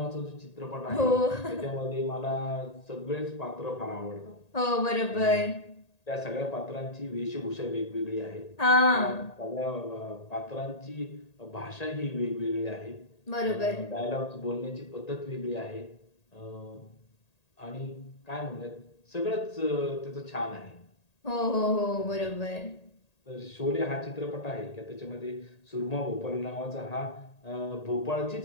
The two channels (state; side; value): late; right; 1.8 ms